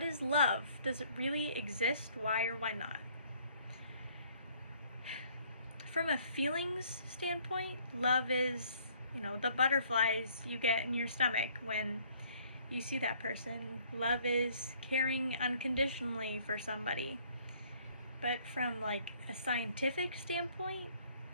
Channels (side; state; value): both; inverted; correlation -0.60